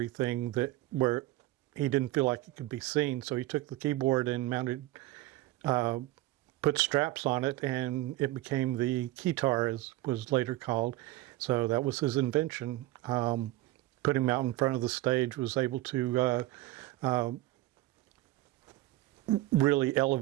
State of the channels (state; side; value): quieter; left; 17.2 dB